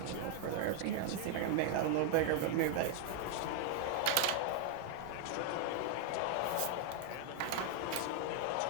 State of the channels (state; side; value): different; both; correlation 0.00